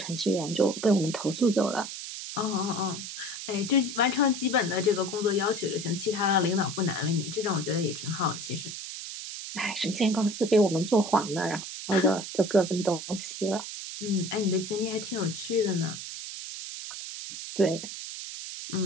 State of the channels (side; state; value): right; noise; hiss, 8 dB below the sound